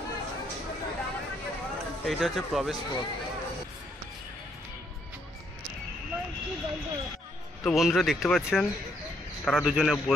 এইটা হচ্ছে প্রবেশ পথ। তো বন্ধুরা দেখতে পাচ্ছেন, তারা দুজনে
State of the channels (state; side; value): normal; both; correlation 0.72